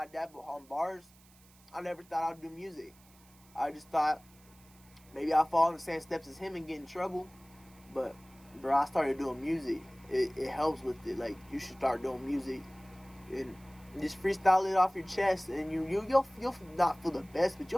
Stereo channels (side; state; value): right; noise; hiss, 27 dB below the sound